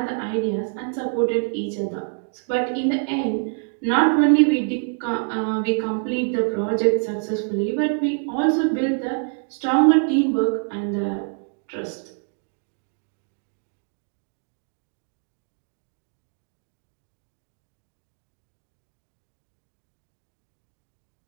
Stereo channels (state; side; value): silent; left; 56 dB below the other